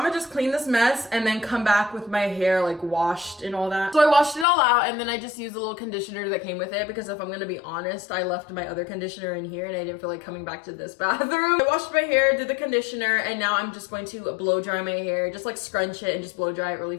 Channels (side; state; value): right; drops out; at 4.5 s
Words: gonna just clean this mess and then come back with my hair like washed and all that. So I washed it all out and then I just used a little conditioner that came with it because if I'm gonna be honest, I left my other conditioner in here and I didn't feel like coming back to this bathroom. I washed my hair, did the conditioner, and now I'm just going to blow dry my hair, just like scrunch it and just blow dry it really